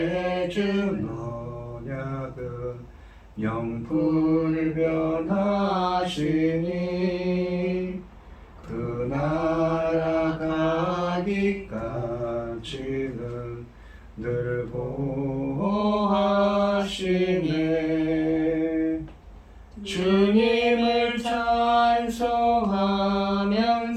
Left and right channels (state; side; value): identical; both; correlation 1.00